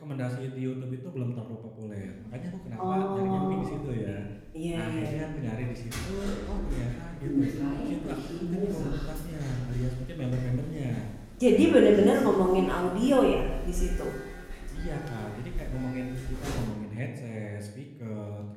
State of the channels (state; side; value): identical; both; correlation 1.00